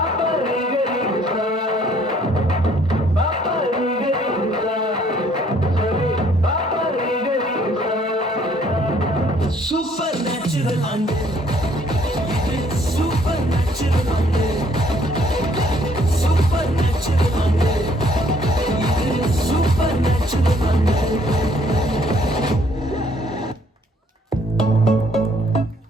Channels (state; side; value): normal; both; correlation 0.63